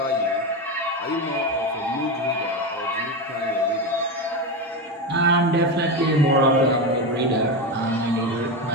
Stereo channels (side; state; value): both; normal; correlation 0.16